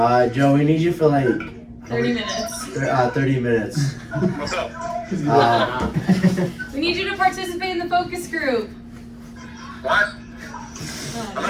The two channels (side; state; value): both; identical; correlation 1.00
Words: Joe, we need you for like... 30 minutes. 30 minutes. What's up? We need you to participate in the focus group. What? I'm